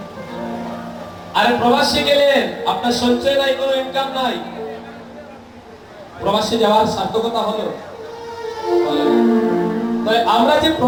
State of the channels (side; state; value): both; identical; correlation 1.00